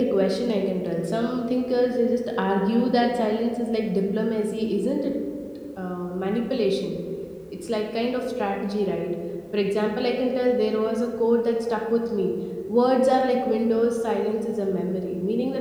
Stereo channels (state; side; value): identical; both; correlation 1.00